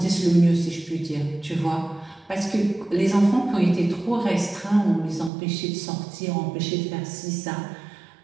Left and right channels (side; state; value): left; drops out; at 5.3 s